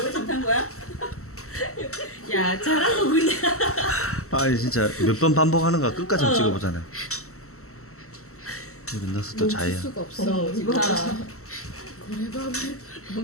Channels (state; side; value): late; right; 0.63 ms